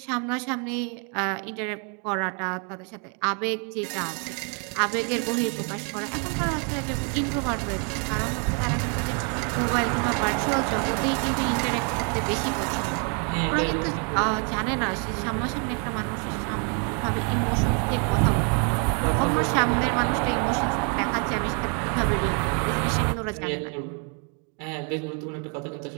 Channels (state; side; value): quieter; left; 38.3 dB